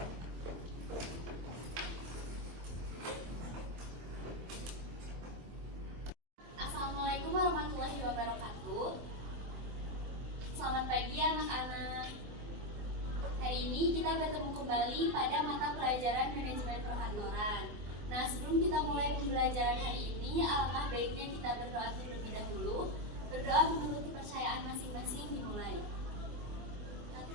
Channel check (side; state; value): left; late; 24 ms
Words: Assalamualaikum warahmatullahi wabarakatuh. Selamat pagi anak-anak. Hari ini kita bertemu kembali pada mata pelajaran manajemen perkantoran. Nah, sebelum kita mulai pembelajaran hari ini, alangkah baiknya kita berdoa terlebih dahulu. Berdoa menurut kepercayaan masing-masing dimulai.